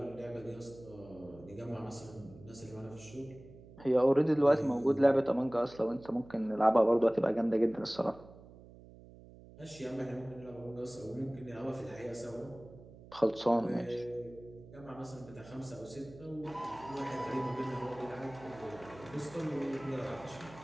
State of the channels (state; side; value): noise; right; hum, 20 dB below the sound